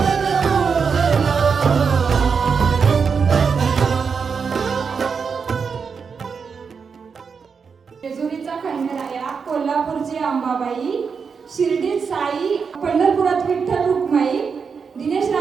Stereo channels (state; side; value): quieter; left; 5.8 dB